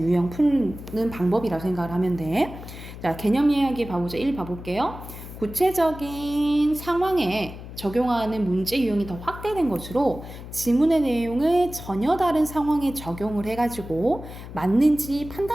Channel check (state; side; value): noise; left; hum, 13 dB below the sound